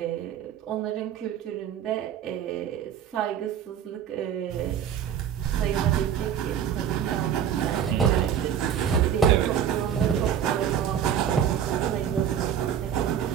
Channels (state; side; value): quieter; left; 9.0 dB